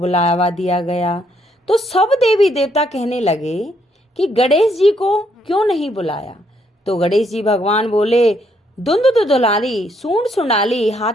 दिया गया। तो सब देवी देवता कहने लगे कि गणेश जी को क्यों नहीं बुलाया। तो गणेश जी भगवान बोले, धुंध दुलारी, सूंड सुंडाली,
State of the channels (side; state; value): both; normal; correlation 0.72